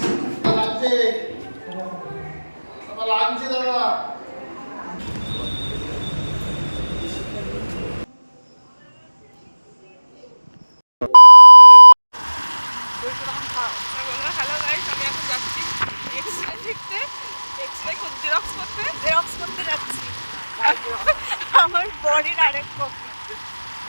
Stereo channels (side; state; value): both; inverted; correlation -1.00